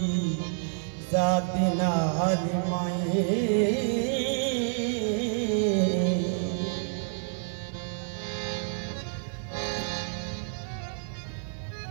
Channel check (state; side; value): silent; left; 59 dB below the other